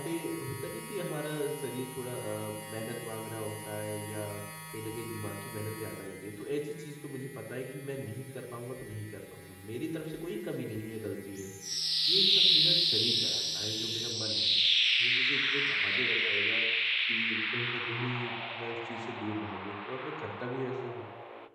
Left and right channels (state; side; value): identical; both; correlation 1.00